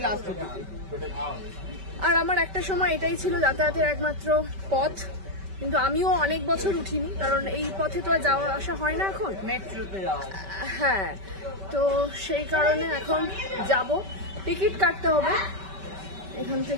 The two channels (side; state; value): left; late; 5.2 ms